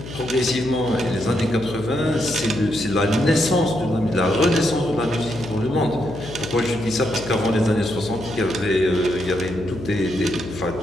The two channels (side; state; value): left; noise; hum, 12 dB below the sound